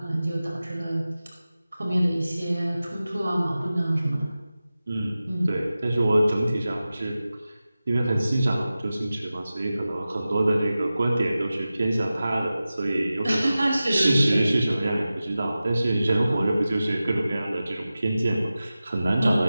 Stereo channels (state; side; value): inverted; both; correlation -0.95